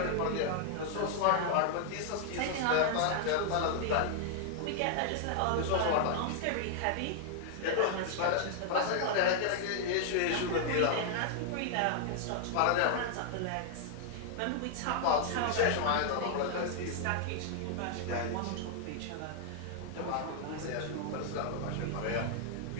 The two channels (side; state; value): both; different; correlation -0.01